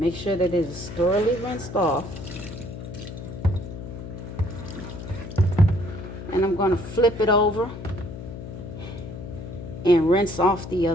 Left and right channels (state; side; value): noise; left; hum, 10 dB below the sound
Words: sure that it is thoroughly rinsed off. And I'm going to flip it over and rinse off the